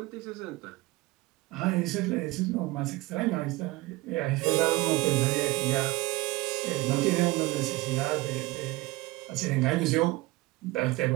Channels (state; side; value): quieter; left; 20.3 dB